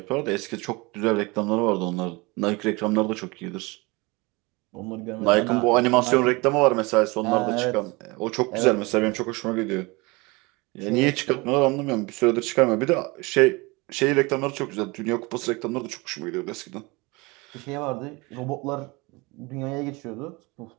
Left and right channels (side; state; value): left; quieter; 25.3 dB